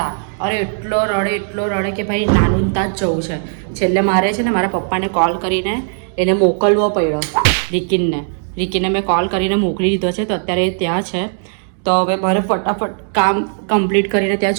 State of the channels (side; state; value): left; silent; 68 dB below the other